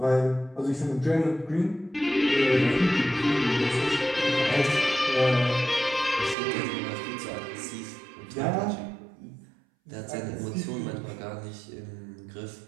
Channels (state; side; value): drops out; left; at 6.4 s